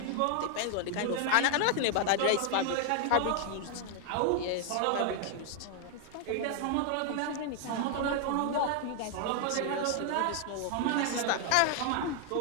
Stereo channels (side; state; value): both; different; correlation 0.00